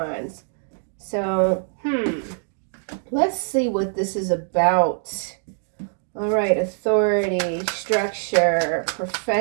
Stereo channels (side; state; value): left; silent; digital silence